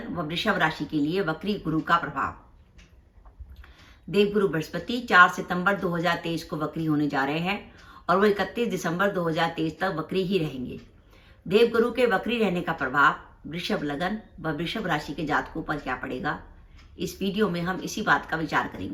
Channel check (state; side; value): identical; both; correlation 1.00